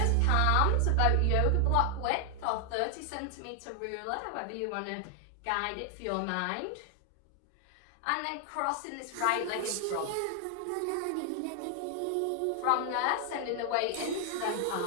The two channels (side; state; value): both; different; correlation 0.00